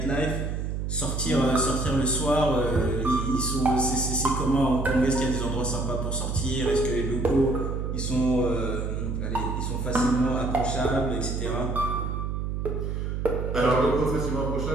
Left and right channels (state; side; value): noise; right; hum, 2 dB below the sound